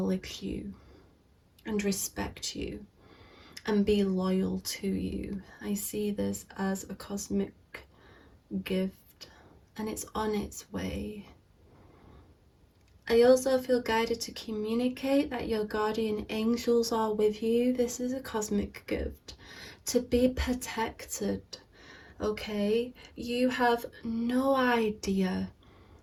you and respect you and be loyal to you. I see this as a cosmic gift, and it's on its way. I also feel guided to communicate that your guardian angels are with you. This is a cosmic gift to be protected, okay? You have no idea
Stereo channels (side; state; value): both; identical; correlation 1.00